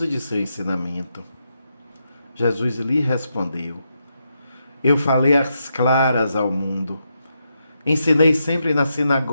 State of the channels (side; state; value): both; inverted; correlation -0.83